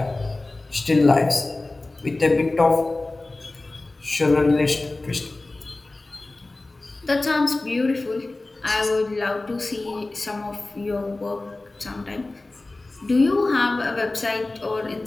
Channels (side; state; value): right; quieter; 3.0 dB